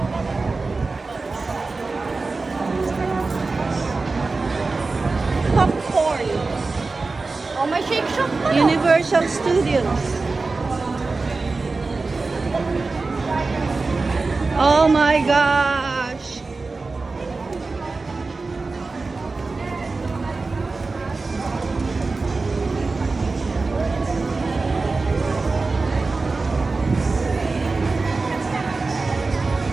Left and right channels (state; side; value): quieter; left; 3.8 dB